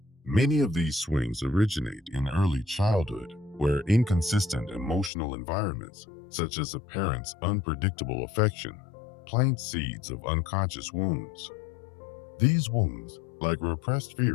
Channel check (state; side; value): drops out; right; at 5.1 s